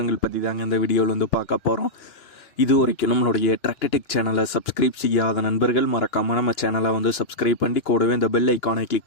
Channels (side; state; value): right; late; 2.9 ms